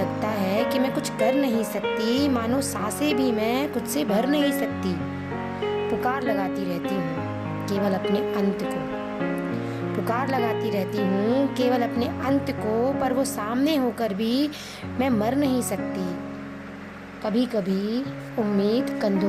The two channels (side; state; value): both; identical; correlation 1.00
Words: है कि मैं कुछ कर नहीं सकती, मानो सांसें भी मैं खुद से भर नहीं सकती। पुकार लगाती रहती हूँ केवल अपने अंत को, पुकार लगाती रहती हूँ केवल अपने अंत को, पर वो सामने होकर भी मैं मर नहीं सकती। कभी कभी उम्मीद